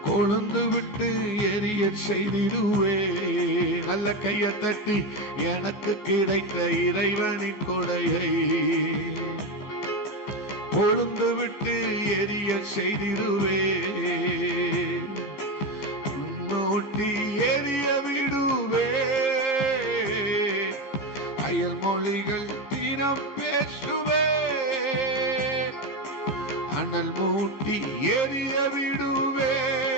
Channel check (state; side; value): late; right; 14 ms